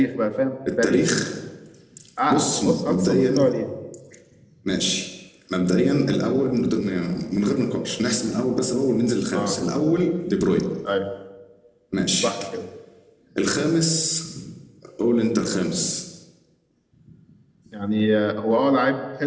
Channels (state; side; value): identical; both; correlation 1.00